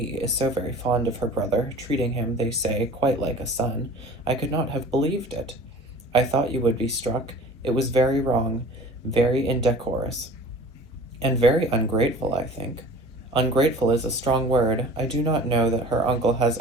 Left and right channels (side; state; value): both; normal; correlation 0.43